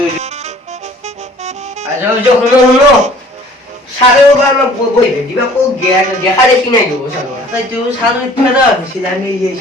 আজো জো হুনো সারে ওবার বই দিবা কো জ্ঞান দেখা দেখি নাই গো সারে তাই তুই সারা ফেরা ছিল আমি এই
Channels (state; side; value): normal; both; correlation 0.52